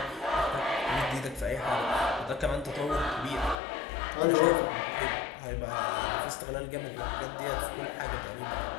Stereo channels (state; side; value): drops out; right; at 3.6 s